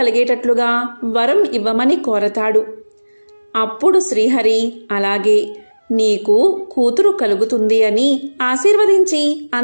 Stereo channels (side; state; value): both; inverted; correlation -1.00